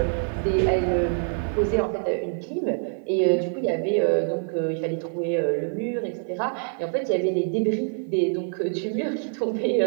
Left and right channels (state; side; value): silent; left; 62 dB below the other